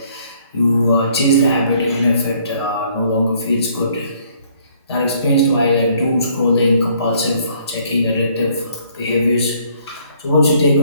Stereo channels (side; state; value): both; inverted; correlation -0.63